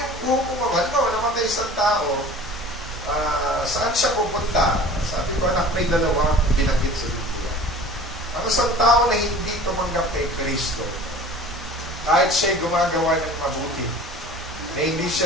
hukman, halimbawa, namatay isang tao, saan siya pupunta? Sabi ko, anak, may dalawa binanggit sa Biblia. isang tao na hindi tumanggap kay Kristo, kahit siya'y gumagawa ng mabuti, na hindi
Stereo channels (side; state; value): both; normal; correlation 0.42